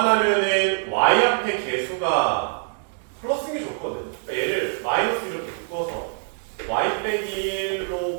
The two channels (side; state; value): left; silent; digital silence